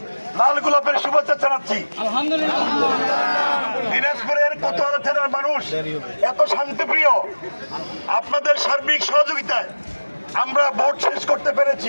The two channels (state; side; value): inverted; both; correlation -1.00